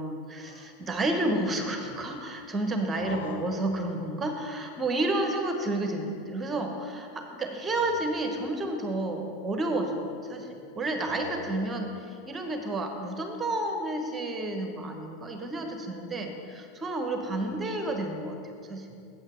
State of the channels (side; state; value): both; normal; correlation 0.49